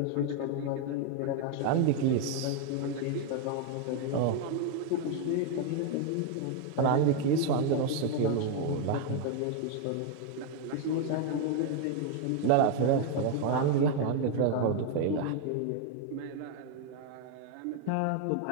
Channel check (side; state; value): both; different; correlation 0.01